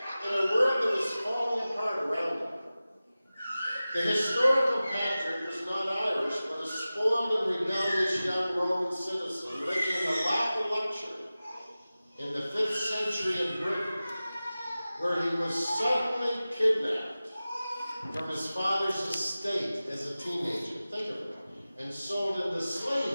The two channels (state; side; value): inverted; both; correlation -0.96